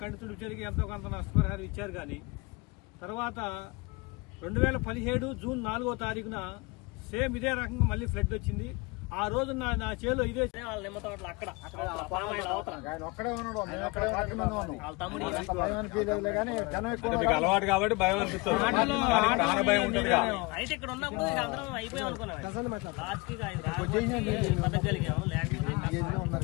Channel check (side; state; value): right; quieter; 26.0 dB